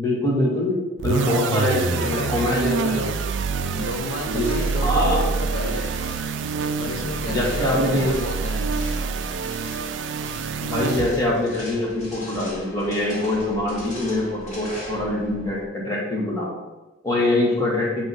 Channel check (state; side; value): normal; both; correlation 0.46